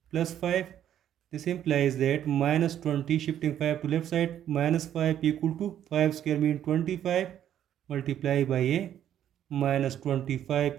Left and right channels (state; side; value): quieter; left; 10.6 dB